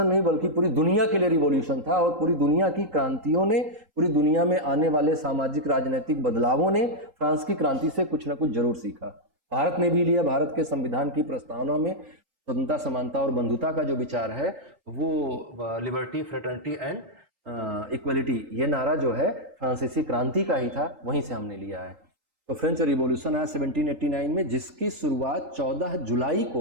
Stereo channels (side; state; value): left; late; 3.8 ms